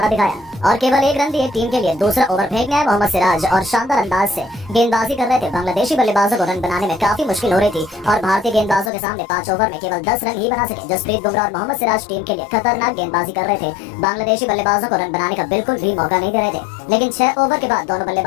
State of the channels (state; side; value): drops out; right; at 8.9 s